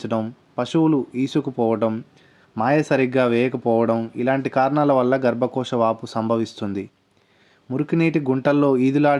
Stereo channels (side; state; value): both; identical; correlation 1.00